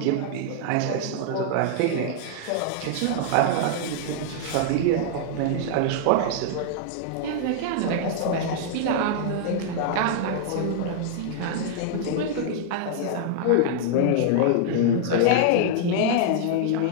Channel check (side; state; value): both; different; correlation -0.01